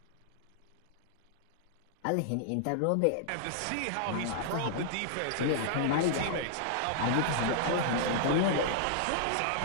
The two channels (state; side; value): different; both; correlation -0.01